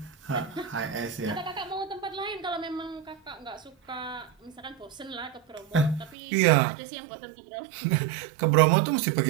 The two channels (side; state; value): left; drops out; at 6.2 s